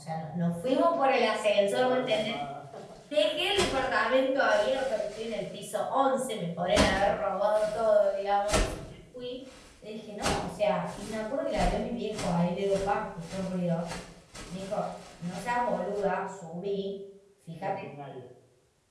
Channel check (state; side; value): identical; both; correlation 1.00